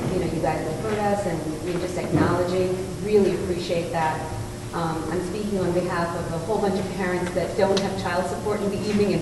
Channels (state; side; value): identical; both; correlation 1.00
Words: you guys have heard us and you're just acknowledging. Really appreciate that. I'm speaking on behalf of a whole bunch of parents that don't have child support in the evening and